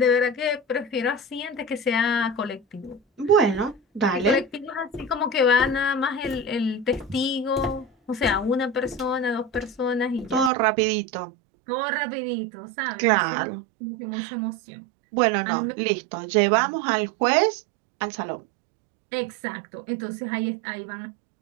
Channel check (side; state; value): left; drops out; at 10.5 s